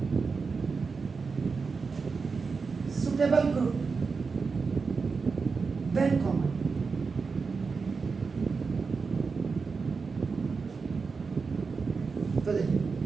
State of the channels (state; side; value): quieter; left; 4.8 dB